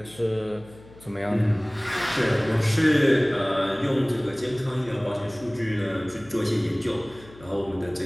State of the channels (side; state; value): left; noise; hum, 22 dB below the sound